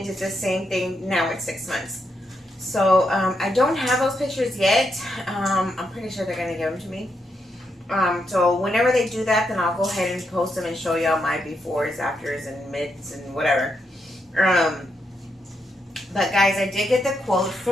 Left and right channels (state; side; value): normal; both; correlation 0.81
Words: did the same thing now at 6 months. So I don't have those pictures yet. I'm pretty sure they're gonna give them to me. So whenever they do that, then I'll go ahead and post them and show y'all my befores, afters, and mids and whatever. But guys, I did get the quote